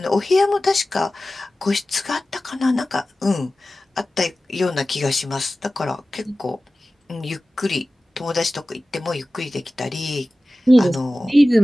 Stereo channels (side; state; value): both; normal; correlation 0.96